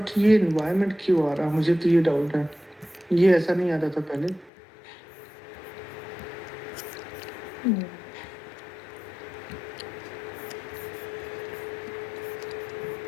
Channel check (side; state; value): right; drops out; at 4.5 s